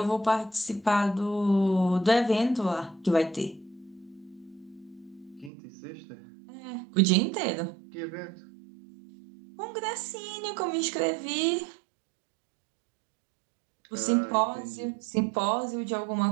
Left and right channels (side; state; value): left; drops out; at 5.5 s